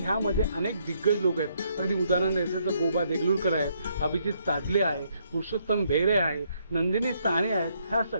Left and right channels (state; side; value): inverted; both; correlation -0.72